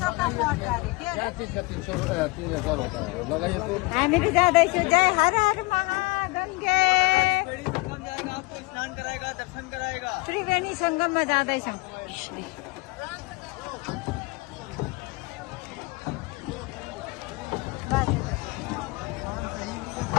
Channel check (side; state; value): right; quieter; 25.1 dB